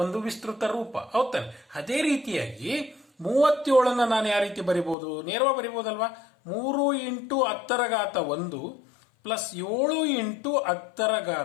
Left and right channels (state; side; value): drops out; right; at 5.0 s